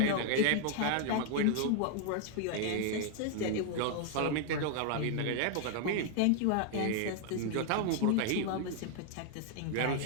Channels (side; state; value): both; different; correlation 0.00